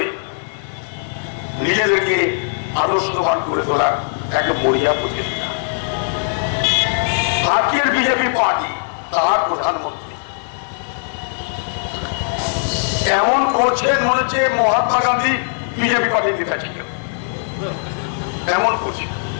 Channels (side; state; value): right; silent; 66 dB below the other